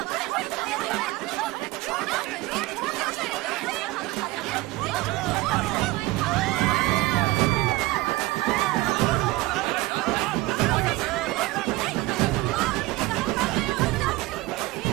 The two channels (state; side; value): quieter; left; 19.7 dB